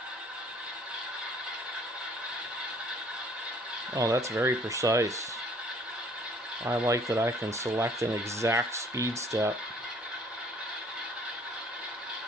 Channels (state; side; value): normal; both; correlation 0.57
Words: Oh, that's very precise. I like that I can select an exact speed step.